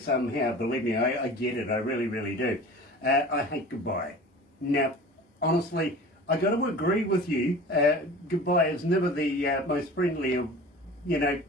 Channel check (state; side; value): normal; both; correlation 0.40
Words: Believe me, I get it. I really, really do. I hate Goodbye. Now, honestly, I got to agree with you. Goodbye is never the most friendly of,